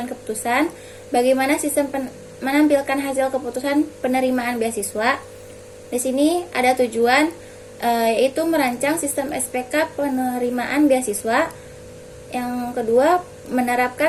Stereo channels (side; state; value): both; identical; correlation 1.00